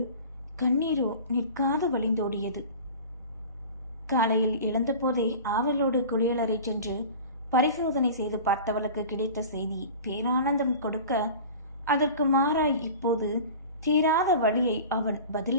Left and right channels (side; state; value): both; inverted; correlation -0.37